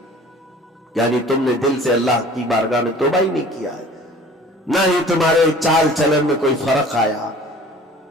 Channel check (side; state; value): both; normal; correlation 0.47